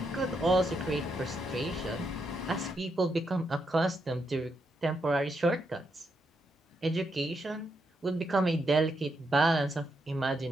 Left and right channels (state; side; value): normal; both; correlation 0.81